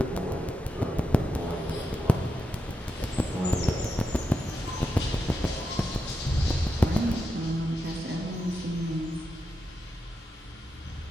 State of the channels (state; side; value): normal; both; correlation 0.86